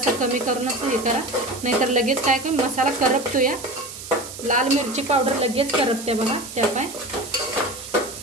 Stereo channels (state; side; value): noise; right; hiss, 12 dB below the sound